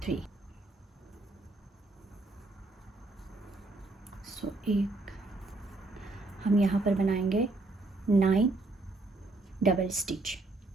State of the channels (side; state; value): left; quieter; 3.1 dB